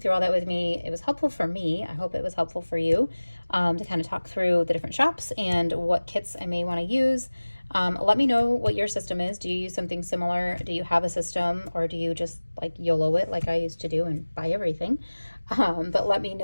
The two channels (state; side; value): inverted; both; correlation -1.00